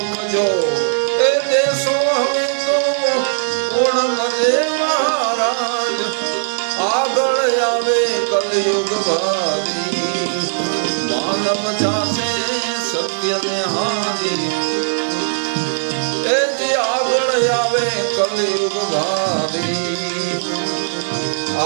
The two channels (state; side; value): silent; left; 67 dB below the other